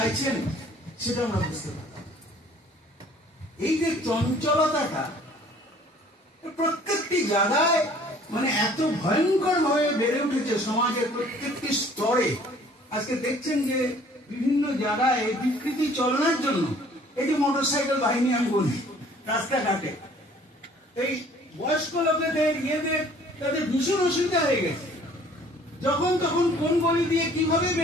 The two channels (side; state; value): both; normal; correlation 0.55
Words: সেটা আমরা বুঝতে পারি। এই যে চঞ্চলতাটা প্রত্যেকটি জায়গায় মানে এত ভয়ঙ্কর ভাবে বেড়ে উঠেছে সমাজের প্রত্যেকটি স্তরে। আজকে দেখছেন যে বিভিন্ন জায়গায় বিকৃতি চলনের জন্য এই যে মোটরসাইকেল বাহিনী আমি বলি রাস্তাঘাটে, এই বয়স্ক লোকেদের তাদের ভীষণ অসুবিধা হয়ে গেছে, যখন তখন কোন গলি দিয়ে কিভাবে